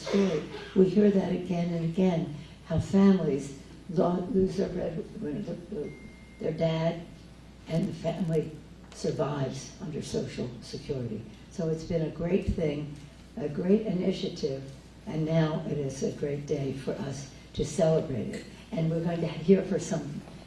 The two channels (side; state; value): both; identical; correlation 1.00